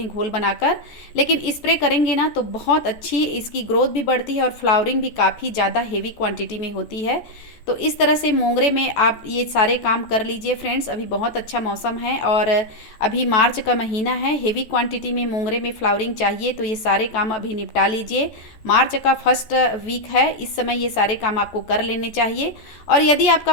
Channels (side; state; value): right; late; 14 ms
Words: घोल बनाकर, लेकिन स्प्रे करेंगे ना तो बहुत अच्छी इसकी ग्रोथ भी बढ़ती है और फ्लावरिंग भी काफ़ी ज़्यादा हेवी क्वांटिटी में होती है। तो इस तरह से मोंगरे में आप ये सारे काम कर लीजिए फ्रेंड्स। अभी बहुत अच्छा मौसम है और अभी मार्च का महीना है। हेवी क्वांटिटी में मोंगरे में फ्लावरिंग चाहिए तो ये सारे काम अभी निपटा लीजिए। मार्च का फर्स्ट वीक है, इस समय ये सारे काम आपको कर लेने चाहिए। और यदि आपका